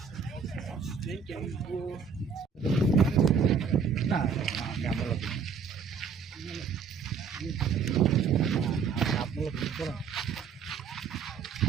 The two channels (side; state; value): left; quieter; 6.1 dB